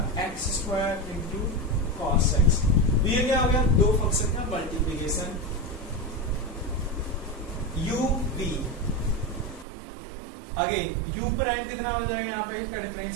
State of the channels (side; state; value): left; drops out; at 9.7 s